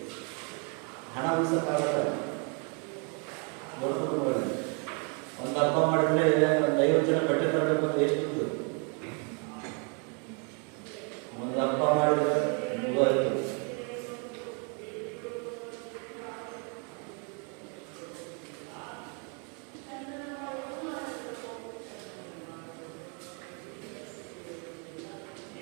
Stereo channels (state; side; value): quieter; left; 36.7 dB